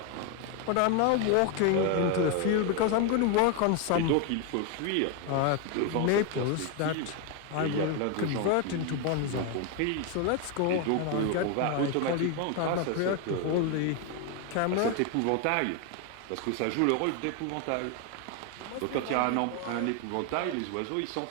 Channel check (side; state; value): both; different; correlation 0.01